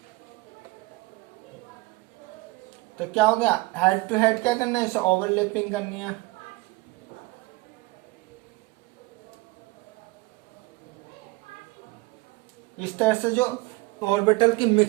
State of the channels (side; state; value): left; quieter; 22.7 dB